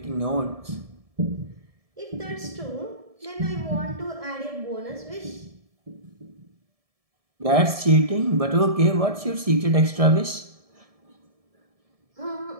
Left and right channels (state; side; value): late; left; 1.7 ms